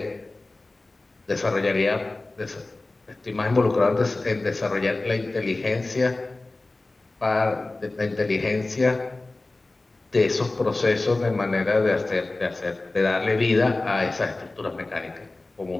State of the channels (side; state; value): right; quieter; 3.1 dB